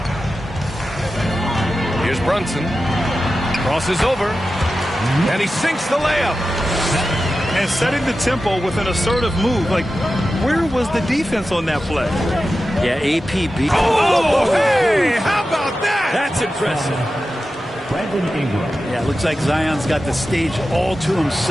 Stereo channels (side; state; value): both; normal; correlation 0.93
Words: Here's Brunson. Crosses over. And he sinks the layup. And setting the tempo with an assertive move. Like, where was the defense on that play? Yeah, AP beat. Oh, hey, how about that? That's impressive. Brandon Ingram. Yeah, it looks like Zion's got the stage all to